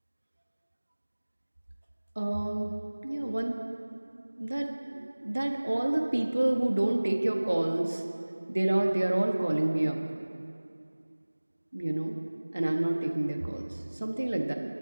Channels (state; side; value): inverted; both; correlation -1.00